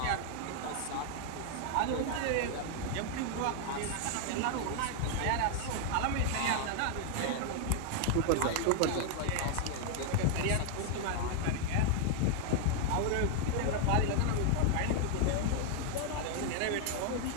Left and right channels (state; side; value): different; both; correlation 0.00